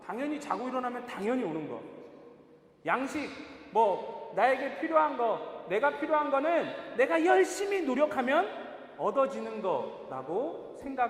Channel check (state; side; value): identical; both; correlation 1.00